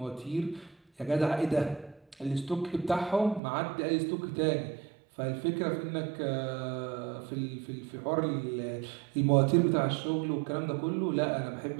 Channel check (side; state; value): left; drops out; at 3.4 s